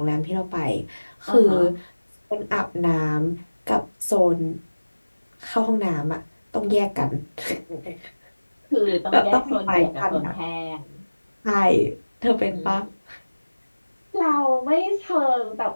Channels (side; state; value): both; inverted; correlation -1.00